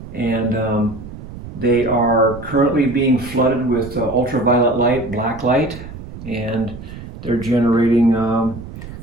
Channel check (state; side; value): noise; right; rumble, 13 dB below the sound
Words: And they are currently being flooded with ultraviolet light, black light, and they're generating